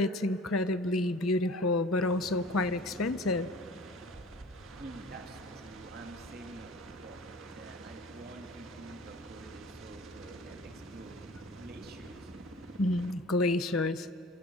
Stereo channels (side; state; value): both; normal; correlation 0.43